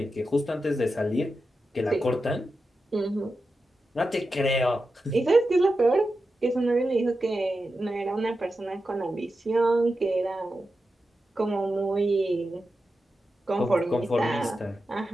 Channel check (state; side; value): normal; both; correlation 0.90